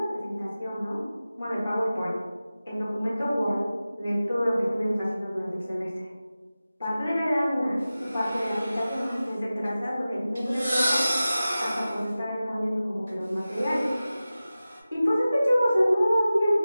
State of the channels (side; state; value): both; inverted; correlation -0.96